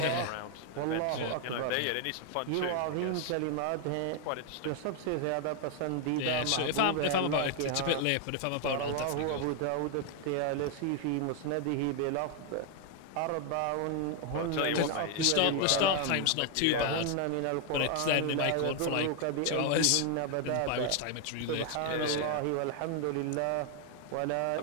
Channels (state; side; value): different; both; correlation 0.00